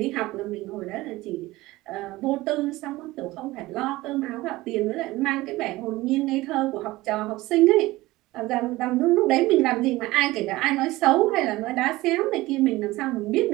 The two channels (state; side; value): quieter; left; 18.9 dB